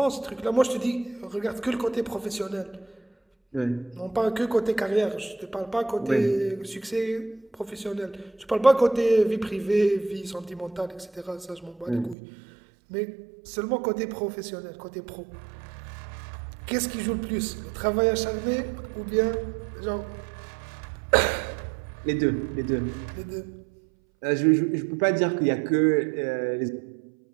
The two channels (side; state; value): left; drops out; at 12.2 s